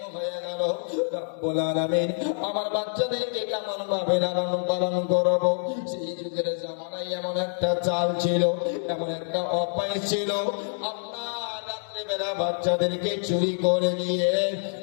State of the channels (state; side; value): silent; right; digital silence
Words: হয়ে গেল। রব্বুল আলামিন আমার বাচ্চাদেরকে কেমন ভাবে লালন পালন করবো? সেই যুগের জামানায় এমন একটা চাল ছিল, এমন একটা অভ্যাস ছিল, আপনার রাত্রেবেলা বাচ্চাদেরকে চুরি করে নিয়ে